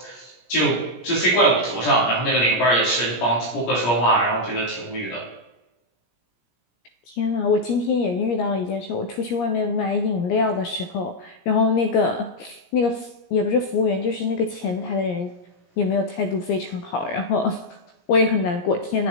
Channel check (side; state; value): right; late; 17 ms